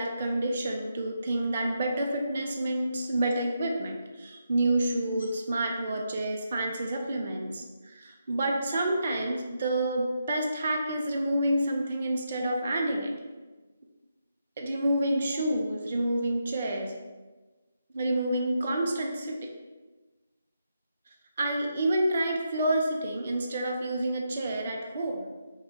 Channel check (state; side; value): inverted; both; correlation -0.82